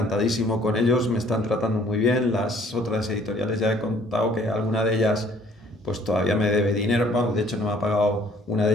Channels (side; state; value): both; normal; correlation 0.57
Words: con ellos, me están tratando muy bien. Las otras editoriales ya he contado que alguna de ellas pues todavía me debe dinero. Bueno, de hecho una de